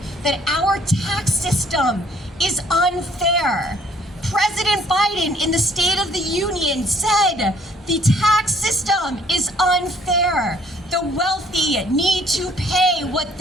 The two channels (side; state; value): both; normal; correlation 0.61